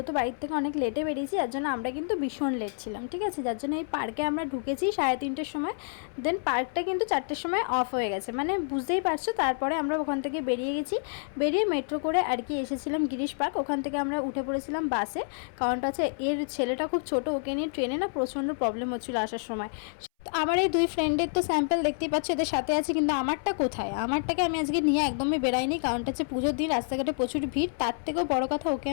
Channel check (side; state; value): right; silent; 59 dB below the other